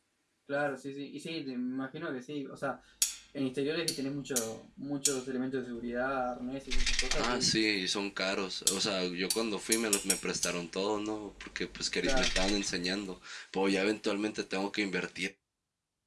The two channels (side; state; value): both; identical; correlation 1.00